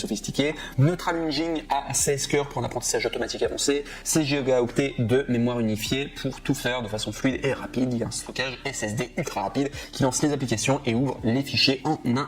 Neutral Engine à 16 cœurs pour un apprentissage automatique avancé, 16 Go de mémoire unifiée pour tout faire de façon fluide et rapide. Il y a un stockage SSD ultra rapide qui lance les applications et ouvre les fichiers en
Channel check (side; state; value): both; identical; correlation 1.00